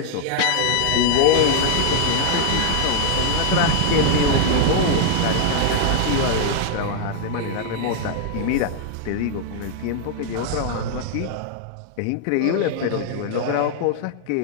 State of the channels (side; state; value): both; different; correlation 0.00